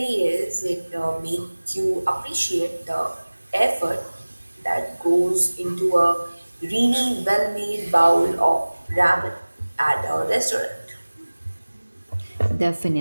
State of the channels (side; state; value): both; inverted; correlation -1.00